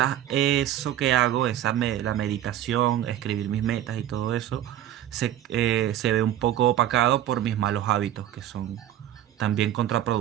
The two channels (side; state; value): left; quieter; 11.9 dB